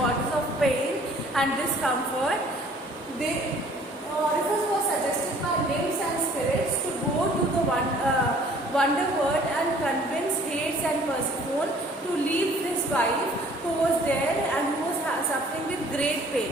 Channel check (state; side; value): normal; both; correlation 0.55